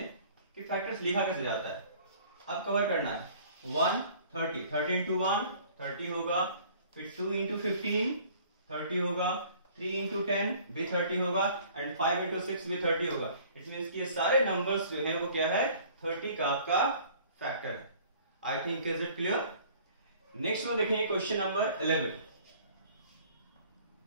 कि फैक्टर्स लिखा कैसे जाता है। अब कवर करना है 1 30 30 इंटू 1 30 होगा, फिर 2 इंटू 15 30 होगा, 3 इंटू 10 भी 30 होगा, एंड 5 इंटू 6 भी 30 होगा। इट मींस कि ये सारे नंबर्स जो है वो क्या है 30 का आपका फैक्टर है। I think is it clear. Next one देखिए क्वेश्चन नंबर 11।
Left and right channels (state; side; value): inverted; both; correlation -0.52